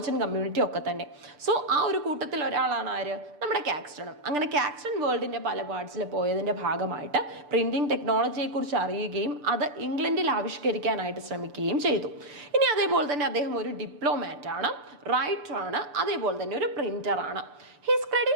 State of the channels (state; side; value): late; left; 6.8 ms